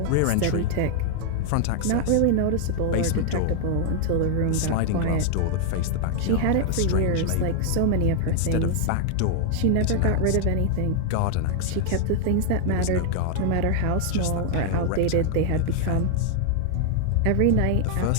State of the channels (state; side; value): different; both; correlation 0.00